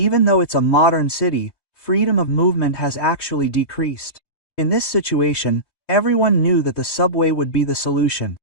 though it's a modern city, freedom of movement has actually decreased. In this situation, everyone knew that the subway would be the solution.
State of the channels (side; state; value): right; late; 3.2 ms